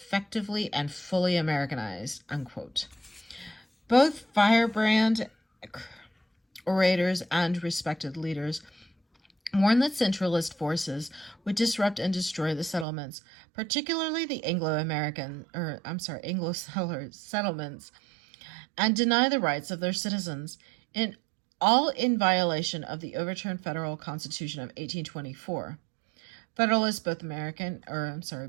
and fully Americanized, unquote. Both firebrand orators and respected leaders warned that centralist forces would disrupt and destroy the settlements, particularly the Anglo settlements, and deny the rights of their citizens, all in violation of the overturned federal Constitution of 1824. Federalists, both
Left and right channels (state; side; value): drops out; left; at 12.9 s